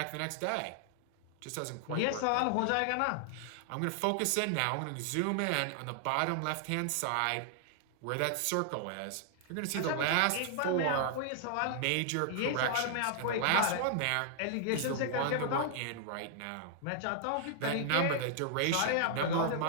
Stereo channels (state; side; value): different; both; correlation -0.01